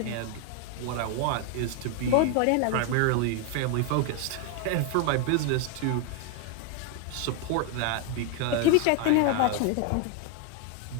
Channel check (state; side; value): different; both; correlation 0.01